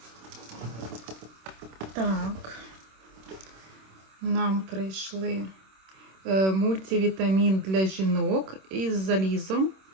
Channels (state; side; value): late; left; 26 ms